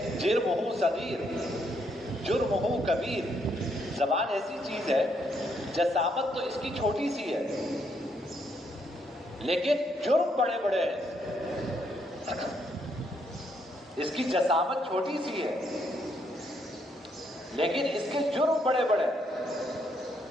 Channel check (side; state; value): both; normal; correlation 0.74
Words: جرمہ صغیر جرمہ کبیر، زبان ایسی چیز ہے، جسامت تو اس کی چھوٹی سی ہے لیکن جرم بڑے بڑے ہیں۔ اس کی جسامت چھوٹی سی ہے لیکن اس کے جرم بڑے بڑے ہیں۔